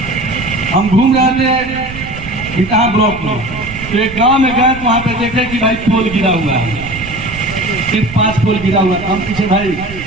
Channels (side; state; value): right; noise; rumble, 13 dB below the sound